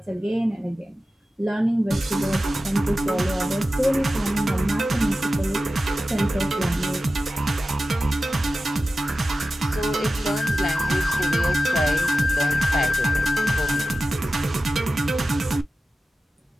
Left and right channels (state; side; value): normal; both; correlation 0.94